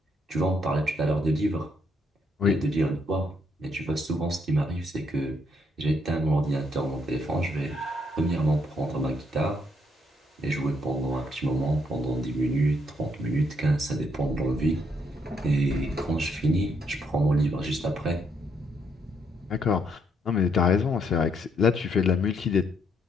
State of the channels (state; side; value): normal; both; correlation 0.73